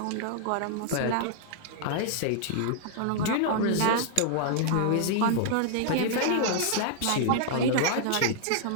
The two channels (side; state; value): both; different; correlation -0.01